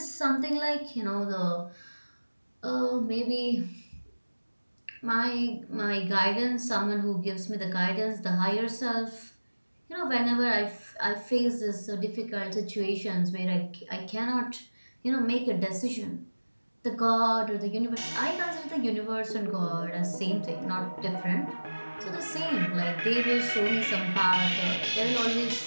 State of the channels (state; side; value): inverted; both; correlation -1.00